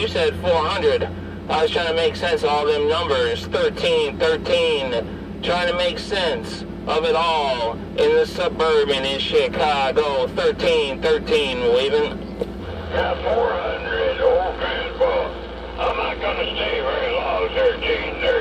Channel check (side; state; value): both; identical; correlation 1.00